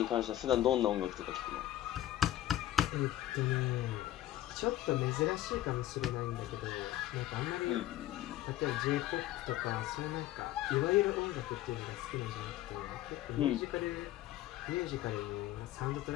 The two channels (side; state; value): right; quieter; 13.8 dB